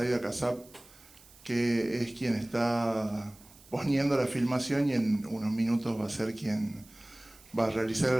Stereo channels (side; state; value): right; noise; hiss, 24 dB below the sound